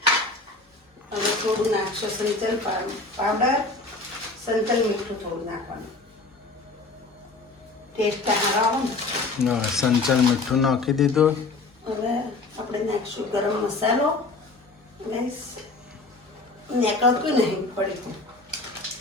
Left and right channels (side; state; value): right; quieter; 3.6 dB